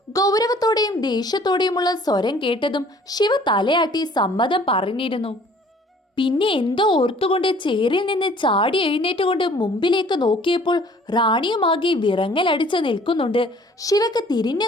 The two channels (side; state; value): both; normal; correlation 0.54